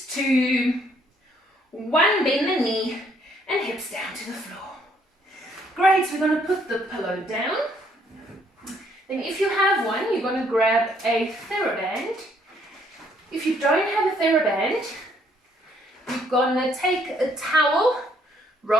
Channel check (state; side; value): normal; both; correlation 0.67